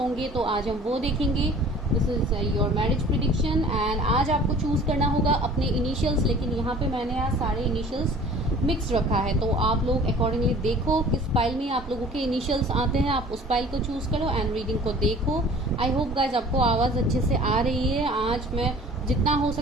तो आज हम वो देखेंगे। This is your marriage prediction and आज आपको चूज करना होगा अपने इनिशियल्स, लेकिन यहाँ पे मैंने आज सारे इनिशियल्स मिक्स रखा है, तो आप लोग अकॉर्डिंगली देखो किस फाइल में आप लोगों के इनिशियल्स आते हैं, आप उस फाइल को चूज करो एंड रीडिंग को देखो। आई होप गाइज आपको आवाज़ अच्छे से आ रही है। आज मैं जितना हो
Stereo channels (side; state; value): both; normal; correlation 0.47